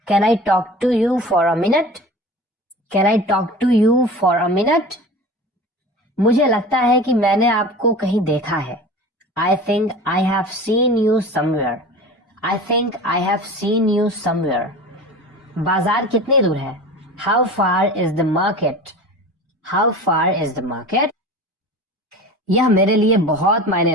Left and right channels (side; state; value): both; normal; correlation 0.36